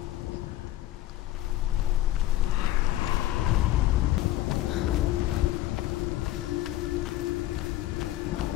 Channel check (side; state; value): right; quieter; 14.6 dB